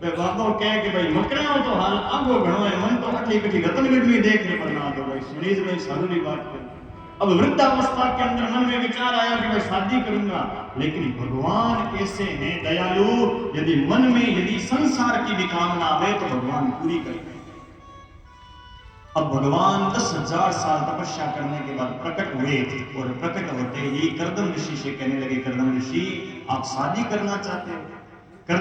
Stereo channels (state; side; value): identical; both; correlation 1.00